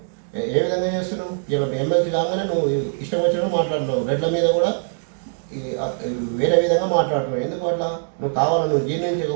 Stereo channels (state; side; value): silent; left; digital silence